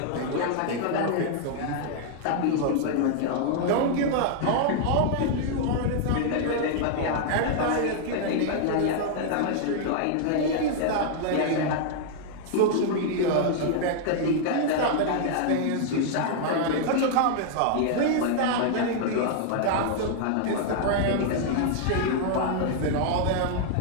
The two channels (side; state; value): both; different; correlation -0.01